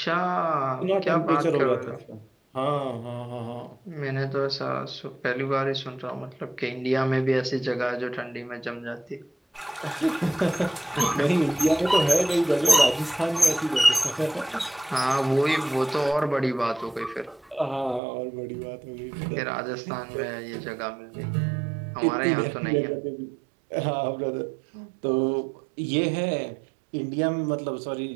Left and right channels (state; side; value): drops out; left; at 18.0 s